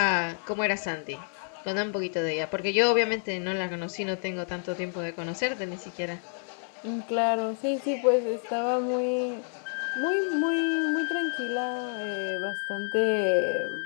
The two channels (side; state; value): right; silent; 56 dB below the other